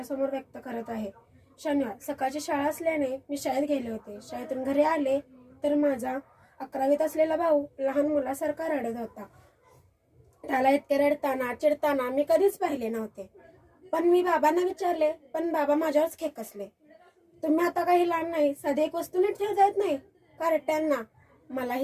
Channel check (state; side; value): identical; both; correlation 1.00